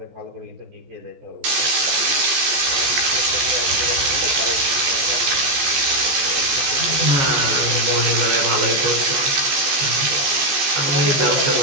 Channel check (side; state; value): left; late; 14 ms